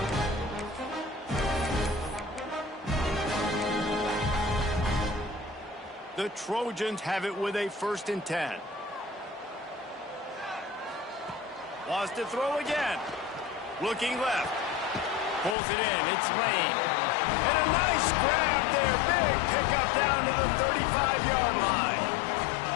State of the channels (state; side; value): drops out; right; at 15.6 s